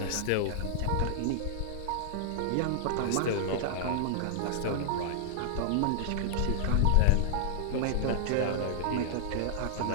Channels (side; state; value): both; different; correlation -0.01